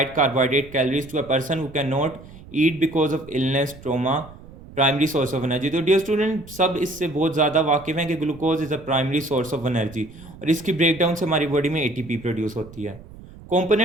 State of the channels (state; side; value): noise; right; rumble, 19 dB below the sound